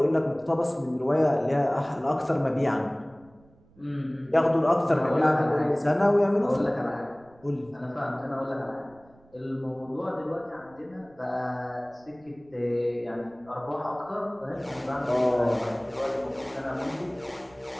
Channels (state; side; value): noise; right; rumble, 29 dB below the sound